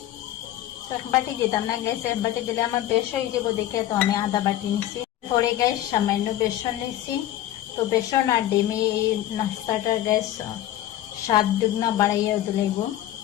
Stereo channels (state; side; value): quieter; right; 13.3 dB